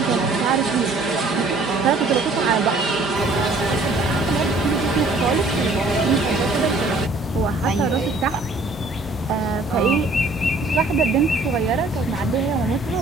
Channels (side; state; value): left; quieter; 3.0 dB